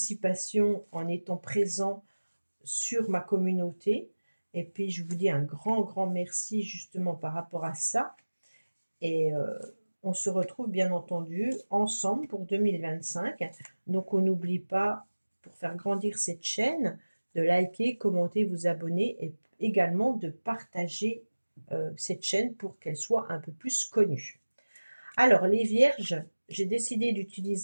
en étant présent sur ma communauté. Et puis je vous dis un grand merci justement par rapport à ça. Et on se retrouve bien entendu ensemble pour 2025. Donc on n'oublie pas, pour faire grandir cette chaîne, de liker, commenter, vous abonner et également de partager cette chaîne pour qu'elle soit un peu plus connue. Alors les vierges, j'ai décidé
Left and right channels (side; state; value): both; inverted; correlation -1.00